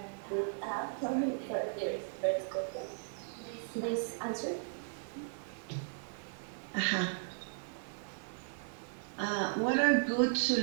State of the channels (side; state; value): left; silent; digital silence